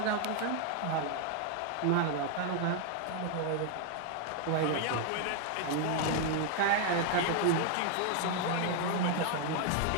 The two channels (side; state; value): both; different; correlation 0.00